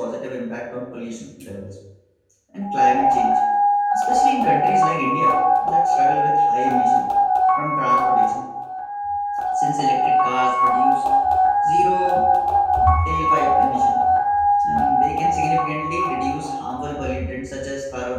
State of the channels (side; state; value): both; identical; correlation 1.00